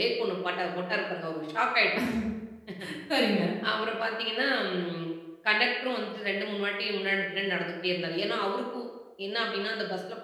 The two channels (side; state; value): both; identical; correlation 1.00